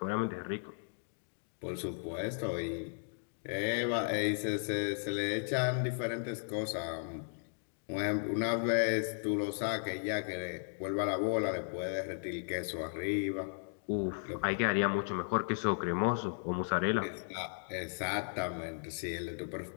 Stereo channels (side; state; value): right; silent; digital silence